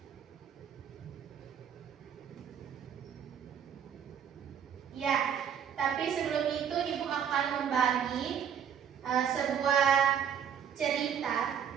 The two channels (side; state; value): left; quieter; 8.4 dB